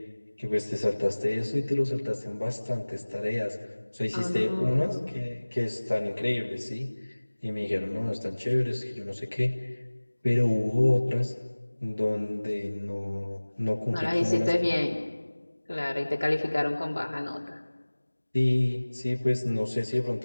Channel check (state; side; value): inverted; both; correlation -1.00